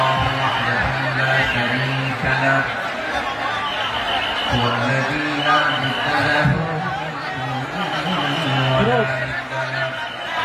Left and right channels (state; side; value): identical; both; correlation 1.00